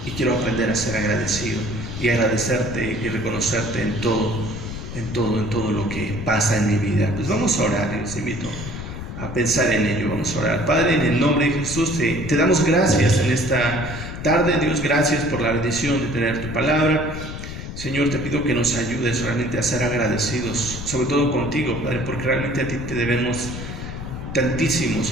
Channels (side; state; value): left; noise; rumble, 8 dB below the sound